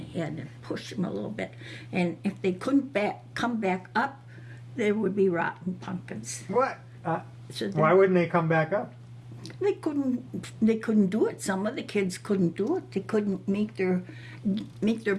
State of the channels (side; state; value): both; identical; correlation 1.00